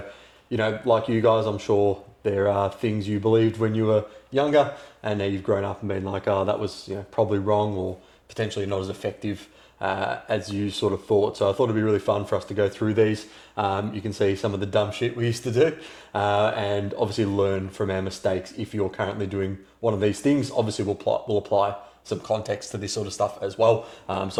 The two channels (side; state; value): both; identical; correlation 1.00